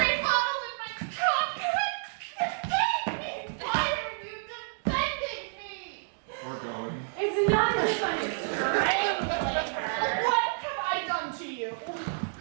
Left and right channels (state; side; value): silent; left; digital silence